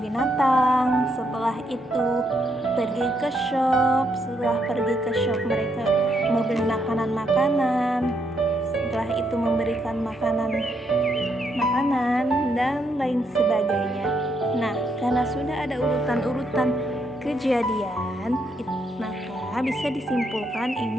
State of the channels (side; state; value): both; normal; correlation 0.76